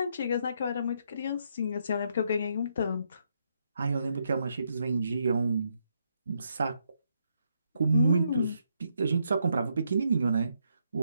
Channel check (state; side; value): inverted; both; correlation -0.76